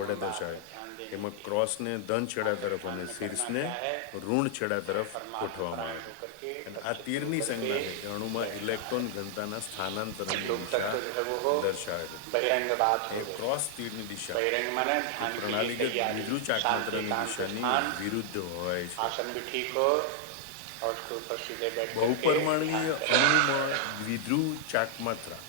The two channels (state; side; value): different; both; correlation 0.00